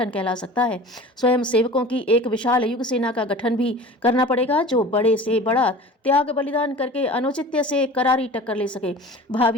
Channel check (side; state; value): both; normal; correlation 0.39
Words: कहला सकता है। स्वयं सेवकों की एक विशाल युग सेना का गठन भी करना पड़ेगा, जो बड़े से बड़ा त्याग बलिदान करके अनुचित्य से करारी टक्कर ले सके।